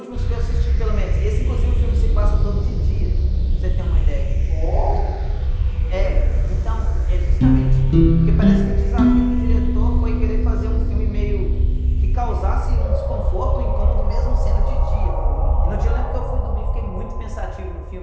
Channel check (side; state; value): both; identical; correlation 1.00